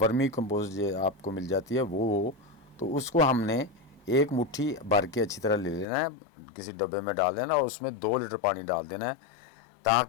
कंपोस्ट जो आपको मिल जाती है वो हो। तो उसको हमने 1 मुट्ठी भर के अच्छी तरह ले लेना है, किसी डब्बे में डाल देना और उसमें 2 लीटर पानी डाल देना है,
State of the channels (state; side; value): drops out; right; at 5.9 s